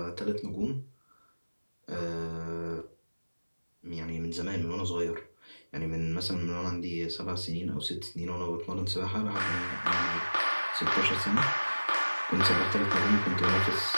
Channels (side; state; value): both; inverted; correlation -1.00